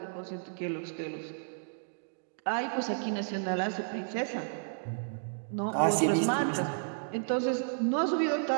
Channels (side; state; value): left; silent; digital silence